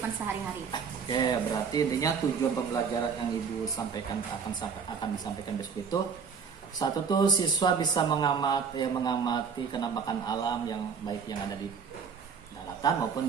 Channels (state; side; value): quieter; left; 6.2 dB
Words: sehari-hari. Oke, berarti intinya tujuan pembelajaran yang Ibu sampaikan akan disampaikan besok itu, satu tuh siswa bisa mengamati kenampakan alam yang baik yang ada di daratan maupun